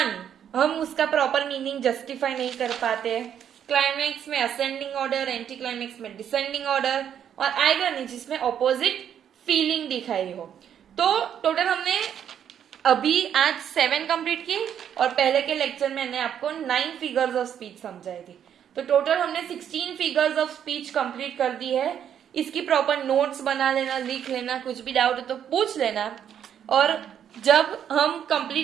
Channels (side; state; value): left; quieter; 9.2 dB